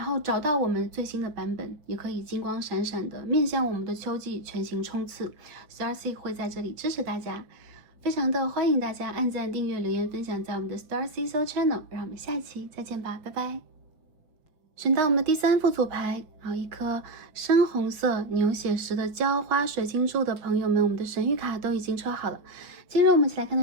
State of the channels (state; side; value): late; left; 6.2 ms